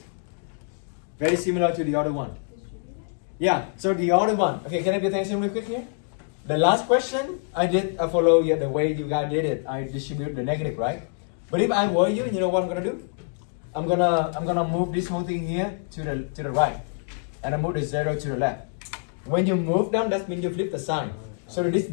Very similar to the other one. Yeah, so the other one. Okay, can I pay attention real quick here? The last question I follow the way you guys did it. I distribute the negative, right? But if I were you, you know what I'm gonna do? I'm gonna move this whole thing here to the right, and I move the 0 to the left. When you move them, that means you flip the sign. So this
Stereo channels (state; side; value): silent; right; digital silence